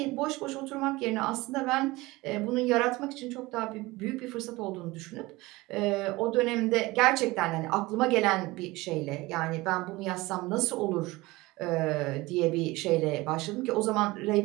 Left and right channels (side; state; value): left; quieter; 20.9 dB